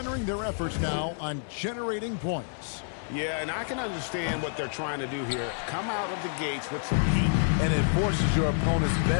their efforts now on generating points. Yeah, and I can understand what they're trying to do here. Come out of the gates with some heat. And it forces your opponent's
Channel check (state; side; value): silent; right; digital silence